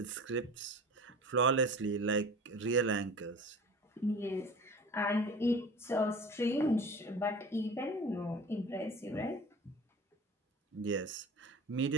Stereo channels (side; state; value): both; normal; correlation 0.38